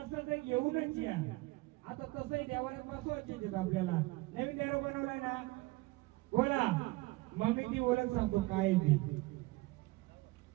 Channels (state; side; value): quieter; left; 21.7 dB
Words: तर घेऊनच या. आता तसंही देवाला बसवायचे आपल्याला. नवीन देव बनवलाय ना, बोला मग मी ती ओळख सांगतो काय ती.